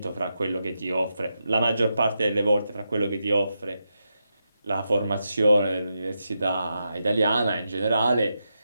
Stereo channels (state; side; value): inverted; both; correlation -0.86